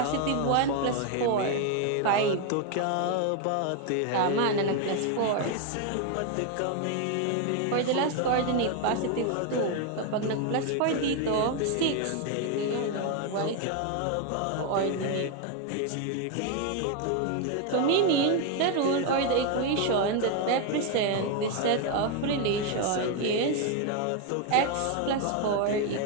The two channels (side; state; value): both; different; correlation 0.01